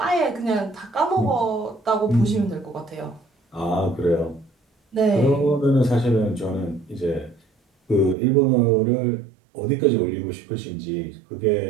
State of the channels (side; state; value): left; drops out; at 8.2 s